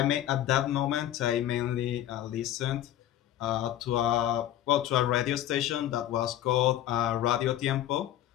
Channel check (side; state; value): right; quieter; 12.4 dB